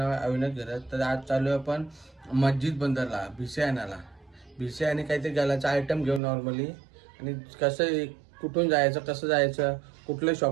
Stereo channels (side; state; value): left; drops out; at 6.2 s